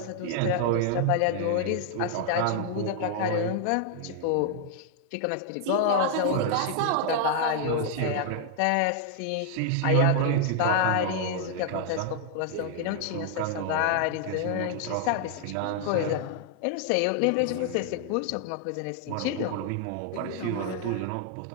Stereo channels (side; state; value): both; different; correlation 0.00